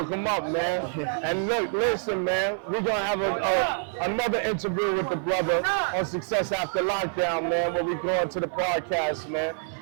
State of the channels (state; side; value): silent; left; 60 dB below the other